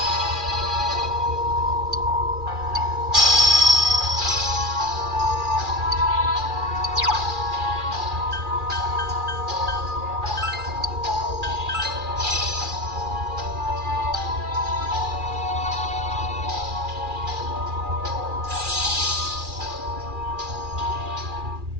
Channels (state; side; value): late; left; 2.4 ms